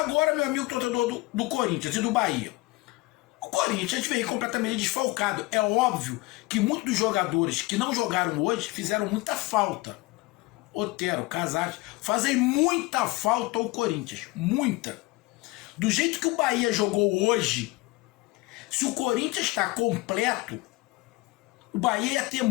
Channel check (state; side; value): quieter; right; 21.7 dB